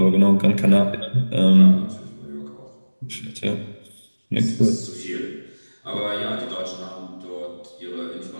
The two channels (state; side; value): inverted; both; correlation -1.00